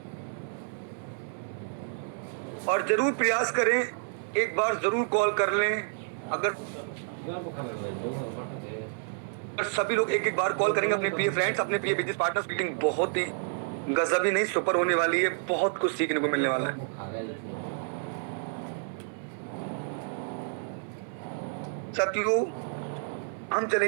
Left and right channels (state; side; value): silent; left; 58 dB below the other